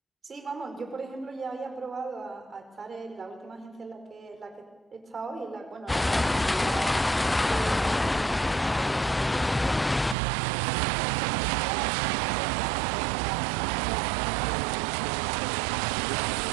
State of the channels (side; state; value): left; drops out; at 10.2 s